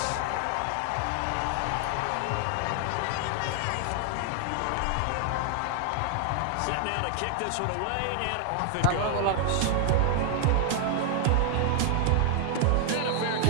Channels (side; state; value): both; different; correlation 0.00